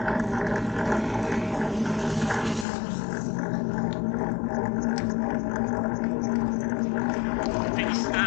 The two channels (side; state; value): right; drops out; at 2.7 s